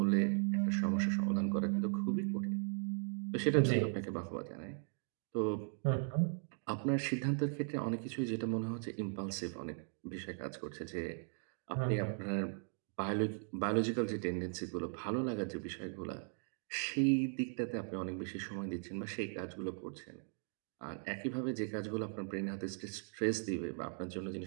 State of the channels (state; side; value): silent; left; 52 dB below the other